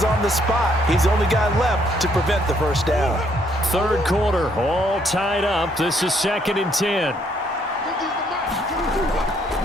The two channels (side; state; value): both; normal; correlation 0.69